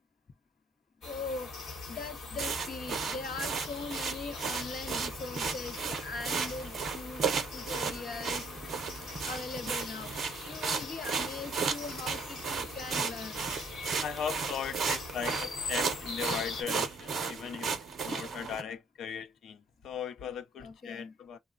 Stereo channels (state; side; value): normal; both; correlation 0.62